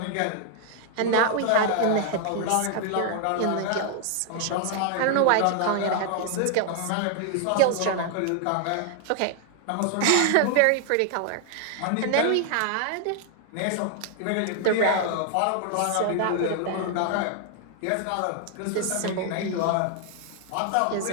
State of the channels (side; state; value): both; different; correlation 0.00